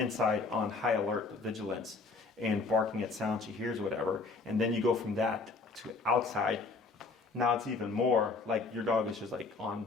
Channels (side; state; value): right; quieter; 4.0 dB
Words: on high alert vigilance and barking at sound she hears, whatever, and then you go from that to outside, now it's even more like your dog is just like